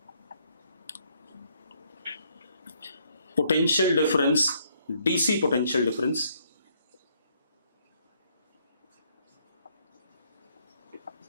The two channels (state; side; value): inverted; both; correlation -0.69